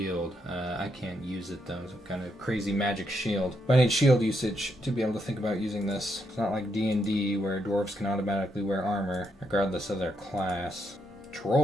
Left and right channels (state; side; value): normal; both; correlation 0.79